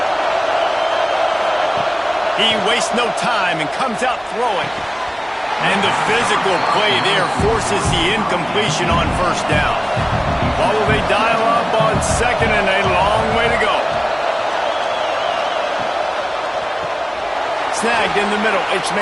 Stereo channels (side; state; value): both; identical; correlation 1.00